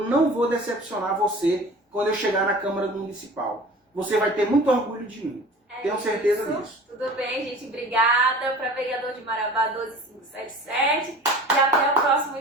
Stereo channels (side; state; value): both; normal; correlation 0.42